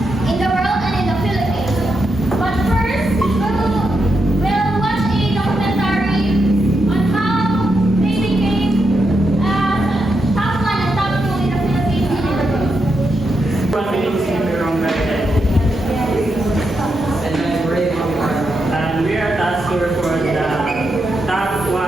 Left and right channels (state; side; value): normal; both; correlation 0.84